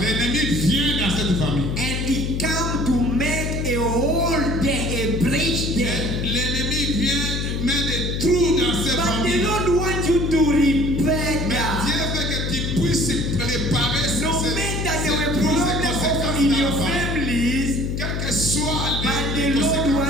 l'ennemi vient dans cette famille. And it come to make a hole there, a breach there. L'ennemi vient mettre des trous dans cette But the famille. Lord wants you to repair Mais that. Dieu veut que tu puisses réparer ces No matter there were trous, ces problems conséquences in dans your la famille. families, Quelles que soient but les the Lord conséquences,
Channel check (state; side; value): noise; left; hum, 2 dB below the sound